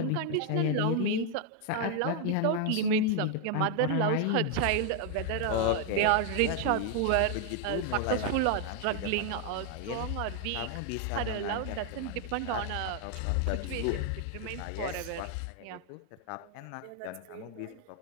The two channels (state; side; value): different; both; correlation 0.00